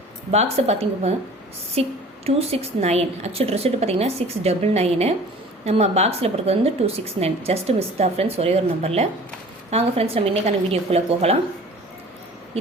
பாக்ஸை பார்த்திங்க அப்படின்னா 269 ஆக்சுவல் ரிசல்ட் பார்த்திங்கன்னா 699. நம்ம பாக்ஸில் போடுறது வந்து 269. ஜஸ்ட் மிஸ் தான் ஃப்ரெண்ட்ஸ், ஒரே ஒரு நம்பரில். வாங்க ஃப்ரெண்ட்ஸ், நம்ம இன்றைக்கான வீடியோக்குள்ளே போகலாம்.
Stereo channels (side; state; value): both; normal; correlation 0.46